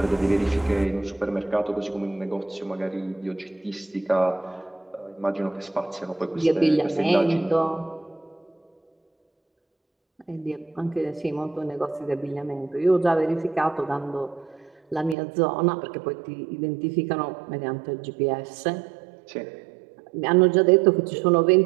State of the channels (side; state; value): left; drops out; at 15.2 s